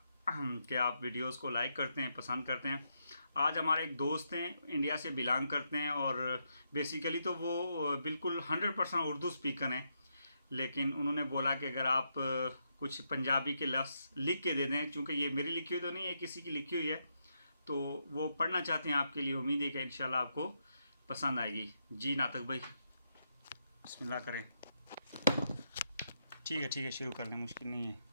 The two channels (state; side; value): inverted; both; correlation -0.81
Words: कि आप वीडियोस को लाइक करते हैं, पसंद करते हैं। आज हमारे एक दोस्त हैं, इंडिया से बिलोंग करते हैं और बेसिकली तो वो बिल्कुल 100% उर्दू स्पीकर हैं। लेकिन उन्होंने बोला कि अगर आप कुछ पंजाबी के लफ्ज़ लिख के दे दें, क्योंकि ये मेरी लिखी हुई तो नहीं है, किसी की लिखी हुई है, तो वो पढ़ना चाहते हैं आपके लिए। उम्मीद है कि इंशाल्लाह आपको पसंद आएगी। जी नातक भाई, बिस्मिल्लाह करें। ठीक है, शुरू कर लें, मुश्किल नहीं है।